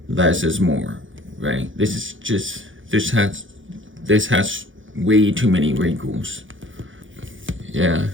less is more, right? This has way too many wrinkles. Yeah,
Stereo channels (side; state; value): left; late; 0.57 ms